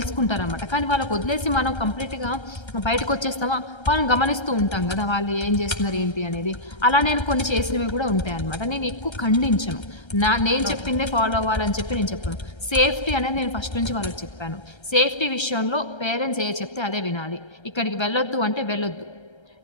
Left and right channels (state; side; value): late; right; 1.3 ms